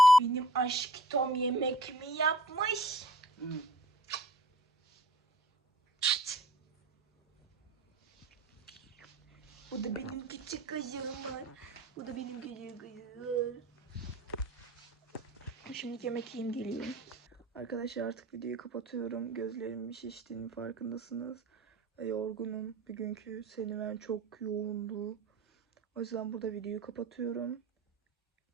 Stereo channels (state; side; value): normal; both; correlation 0.49